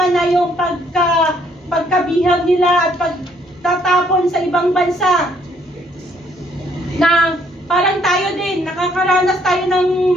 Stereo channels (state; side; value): normal; both; correlation 0.66